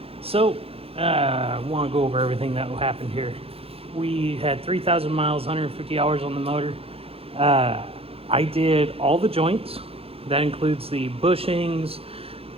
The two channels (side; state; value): left; late; 0.28 ms